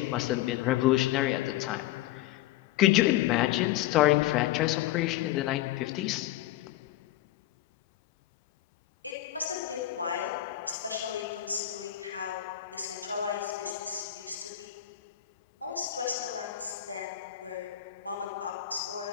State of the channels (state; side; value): quieter; right; 13.3 dB